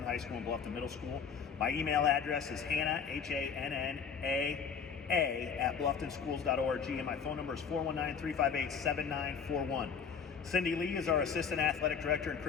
High School and Bluffton Middle School. My email address is Hanna, H-A-N-N-A-A, at blufftonschools.org, and my phone number is 419-358-7941. Cindy Lee is our Assistant Athletic Director, and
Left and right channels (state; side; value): quieter; right; 6.5 dB